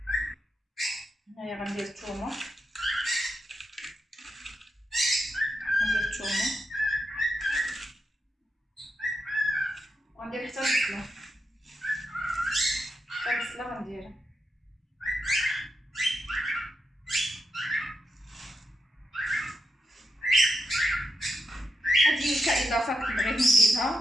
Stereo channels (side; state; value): both; normal; correlation 0.86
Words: هنايا غندير الثومه، وغندير حتى البصله، غنديرها. هذه كاضافه كنت بغيت